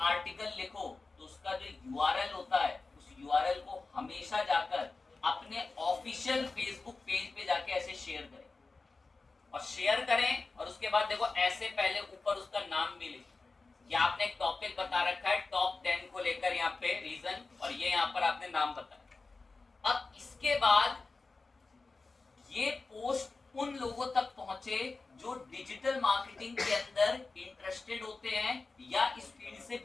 आर्टिकल लिखो तो उसका जो यूआरएल होता है, उस यूआरएल को हमेशा जाकर अपने ऑफिशियल फेसबुक पेज पे जाके ऐसे शेयर करें, और शेयर करें और उसके बाद देखो ऐसे पहले ऊपर उसका नाम भी लिखें। या आपने एक टॉपिक बता रखा है टॉप 10 को लेकर यहाँ पे रीजन, और ये यहाँ पर आपने नाम बताया। अब इसके बाद ये पोस्ट उन लोगों तक पहुंचे जो डिजिटल मार्केटिंग के अंदर इंटरेस्टेड होते हैं या इस फील्ड से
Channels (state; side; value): quieter; right; 3.8 dB